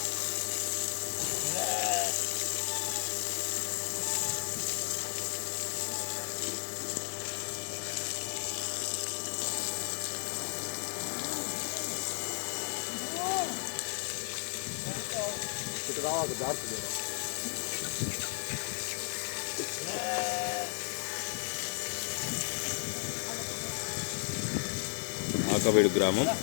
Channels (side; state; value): right; silent; 55 dB below the other